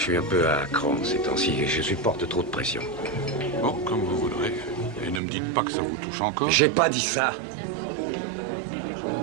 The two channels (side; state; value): left; drops out; at 5.2 s